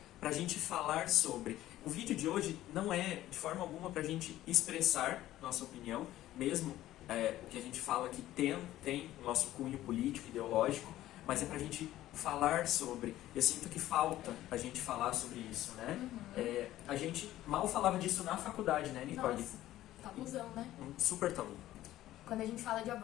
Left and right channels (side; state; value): right; quieter; 14.4 dB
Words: pra gente falar sobre. O vídeo de hoje não é de forma alguma pra gente expressar nossa opinião, mesmo que a gente fala que tem o nosso cunho político, ideológico, mas é pra gente falar sobre. Eu sinto que falta a gente falar sobre isso, né? A gente mal falava disso na faculdade, né, Nicole? Nossa, tabuzão, né? Um super tabu. Quando a gente fala de